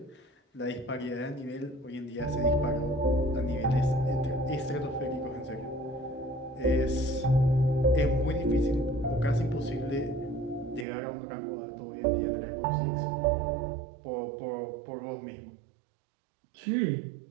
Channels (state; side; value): drops out; left; at 10.9 s